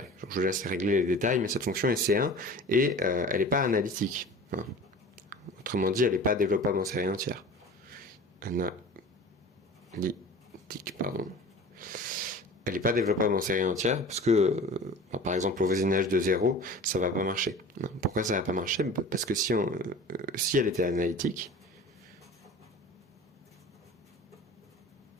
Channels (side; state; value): both; normal; correlation 0.40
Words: Donc, je vous laisse régler les détails, mais cette fonction est C1 et elle n'est pas analytique. Autrement dit, elle n'est pas développable en série entière. Analytique, pardon. Elle n'est pas développable en série entière parce que, par exemple, au voisinage de 0, ça va pas marcher. Pourquoi ça va pas marcher? Parce que si elle était analytique,